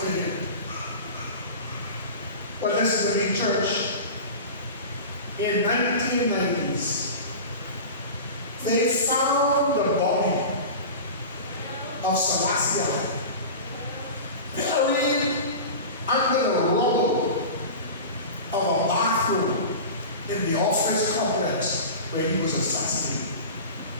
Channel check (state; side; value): inverted; both; correlation -0.32